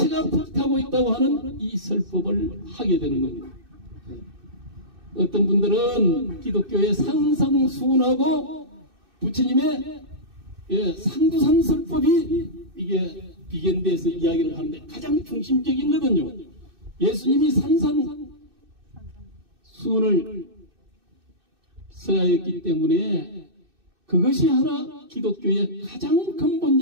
불타고 있다고 하는 이 설법을 하게 되는 겁니다. 어떤 분들은 기독교의 상상수훈하고 부처님의 상두산설법이 이게 비견돼서 이야기를 하는데 가장 중심적인 거거든요. 예수님이 산상수훈을 써야했기 때문에 그것이 하나 기독교의 가장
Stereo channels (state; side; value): late; left; 2.6 ms